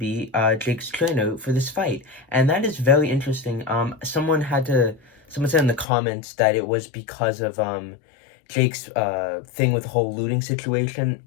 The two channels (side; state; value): right; drops out; at 5.9 s